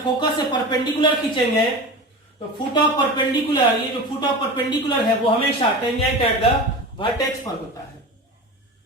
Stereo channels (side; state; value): both; normal; correlation 0.30